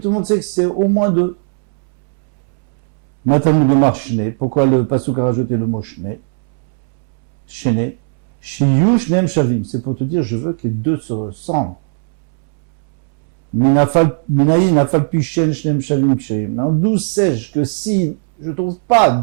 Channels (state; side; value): silent; left; 68 dB below the other